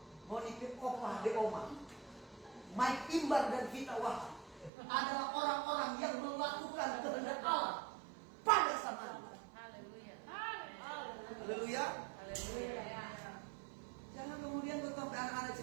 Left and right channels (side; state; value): left; drops out; at 4.7 s